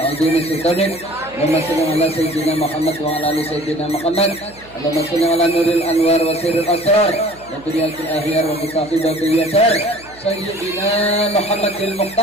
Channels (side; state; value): right; noise; hum, 24 dB below the sound